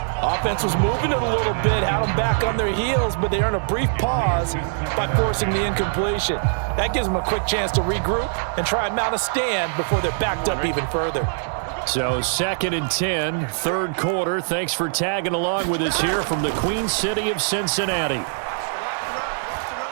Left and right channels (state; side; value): silent; left; 64 dB below the other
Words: Offense was moving it a little bit, had them back on their heels, but they earn a brief pause by forcing the incompletion. That gives them a quick chance to regroup and try and mount a stand before they're backed up even further. So 2nd and 10, 3rd quarter. Thanks for tagging along with us here from the Queen City of Cincinnati.